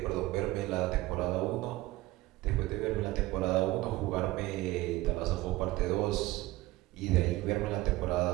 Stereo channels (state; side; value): quieter; left; 18.5 dB